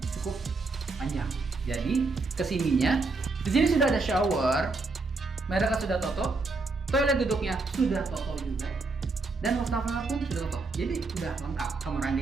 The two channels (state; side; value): quieter; left; 3.7 dB